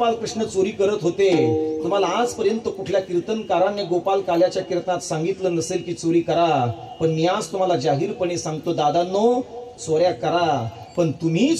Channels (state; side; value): identical; both; correlation 1.00